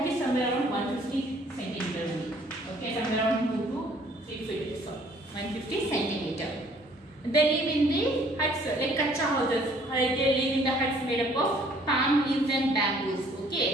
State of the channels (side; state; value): both; normal; correlation 0.59